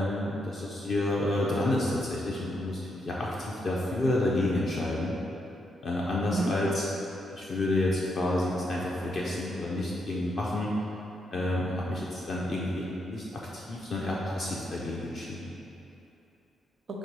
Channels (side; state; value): both; normal; correlation 0.79